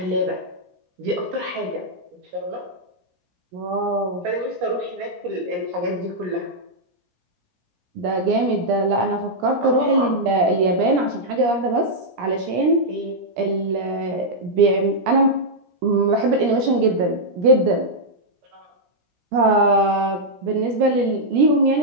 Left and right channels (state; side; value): late; left; 17 ms